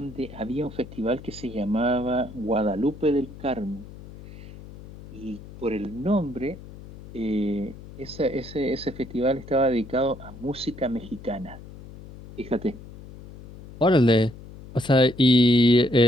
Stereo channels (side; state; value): left; noise; hum, 16 dB below the sound